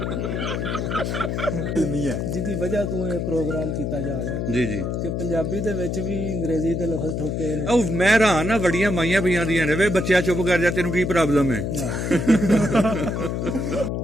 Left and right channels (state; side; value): noise; left; hum, 1 dB below the sound